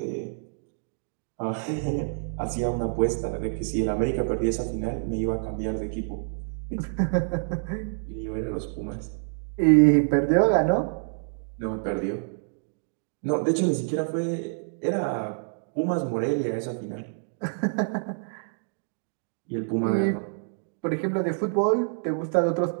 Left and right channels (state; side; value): silent; left; digital silence